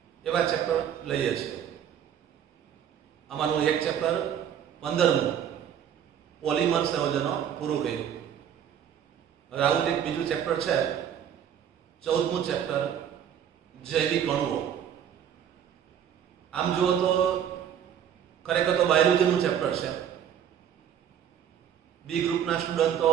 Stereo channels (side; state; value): left; quieter; 9.2 dB